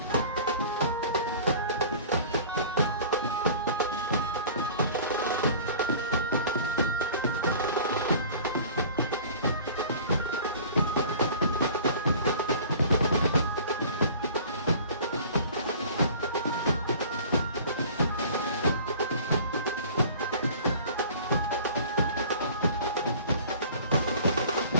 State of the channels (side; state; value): both; inverted; correlation -0.45